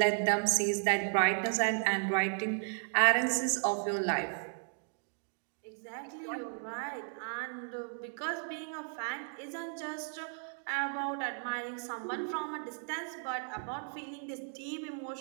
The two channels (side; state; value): left; silent; 55 dB below the other